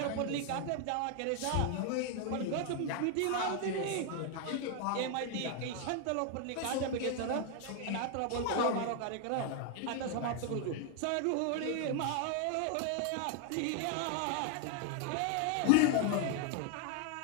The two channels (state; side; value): different; both; correlation 0.00